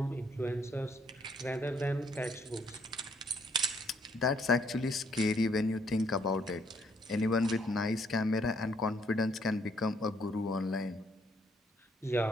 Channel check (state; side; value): normal; both; correlation 0.69